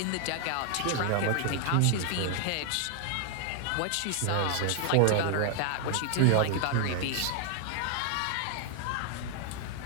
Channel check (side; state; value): both; different; correlation 0.00